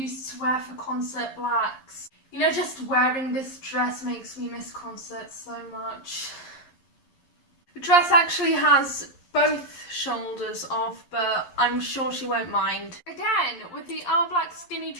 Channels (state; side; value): late; right; 11 ms